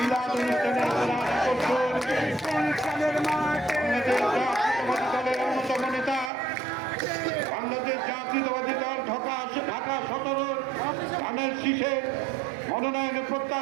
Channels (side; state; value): left; drops out; at 6.3 s